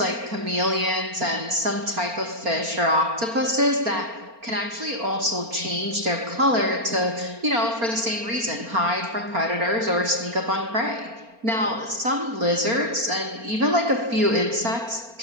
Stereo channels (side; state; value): left; late; 4.3 ms